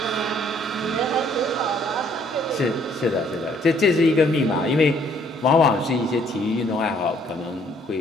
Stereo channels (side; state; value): both; normal; correlation 0.63